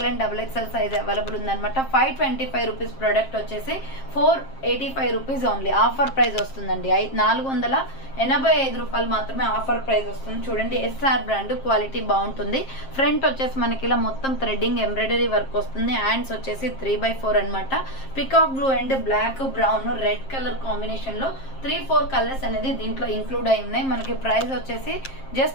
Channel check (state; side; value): late; right; 7.5 ms